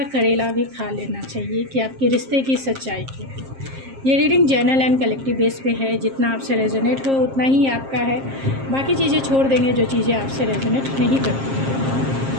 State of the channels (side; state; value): left; late; 7.5 ms